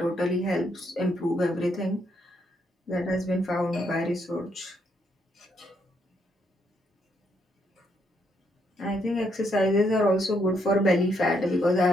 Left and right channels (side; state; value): both; normal; correlation 0.75